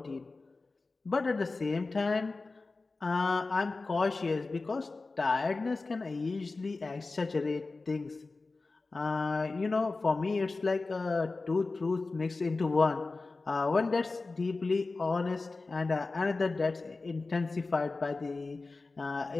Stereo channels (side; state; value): right; quieter; 3.6 dB